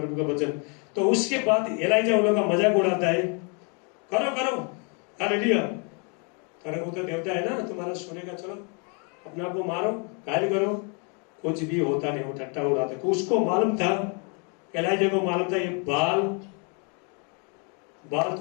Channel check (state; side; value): quieter; right; 36.4 dB